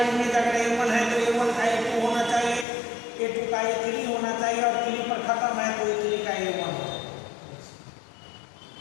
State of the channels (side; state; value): right; drops out; at 2.7 s